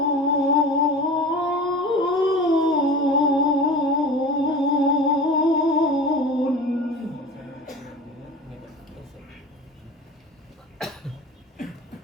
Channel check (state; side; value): normal; both; correlation 0.35